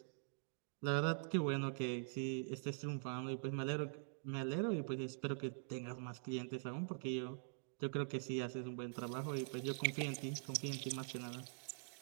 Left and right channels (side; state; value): left; silent; digital silence